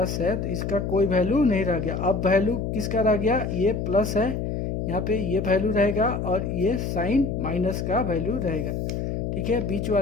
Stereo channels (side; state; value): left; noise; hum, 2 dB below the sound